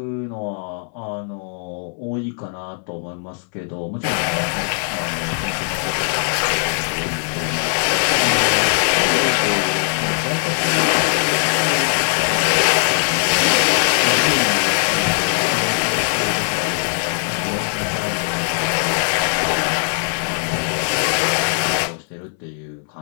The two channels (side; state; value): right; silent; 62 dB below the other